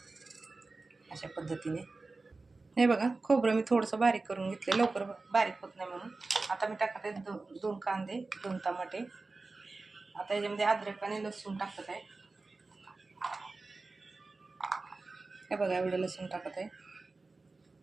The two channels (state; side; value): quieter; left; 3.6 dB